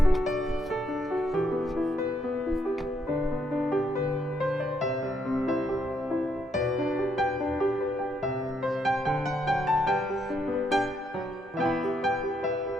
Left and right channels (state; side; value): normal; both; correlation 0.75